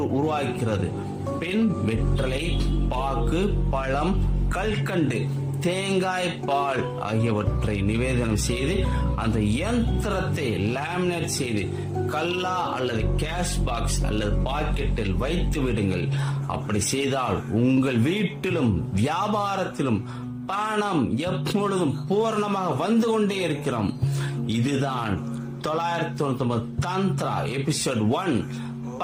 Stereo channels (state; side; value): identical; both; correlation 1.00